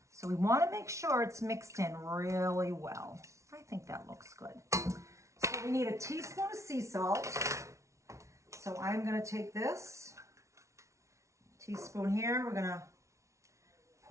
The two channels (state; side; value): late; left; 0.14 ms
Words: So we want to make sure it's mixed in really well. I think that looks good. So we need a teaspoon of sea salt. So I'm going to take this teaspoon here. We're going to